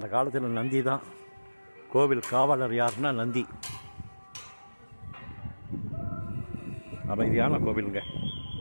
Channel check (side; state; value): both; inverted; correlation -1.00